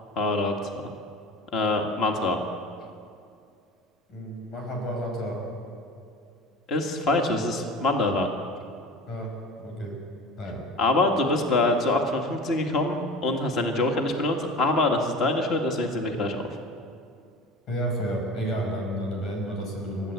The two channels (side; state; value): both; normal; correlation 0.36